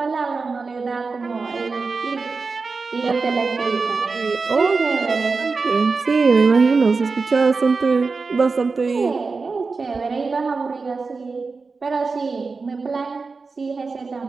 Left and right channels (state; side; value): quieter; left; 4.3 dB